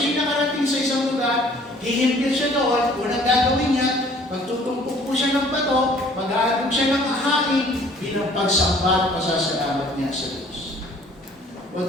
nakarating sa isang lugar, hihimpil siya doon, unang gagawin niya, magtutumpok po siya ng bato, mag-aalog siya ng ahain, bilang pagsamba at pasasalamat niya sa Diyos.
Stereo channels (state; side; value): normal; both; correlation 0.55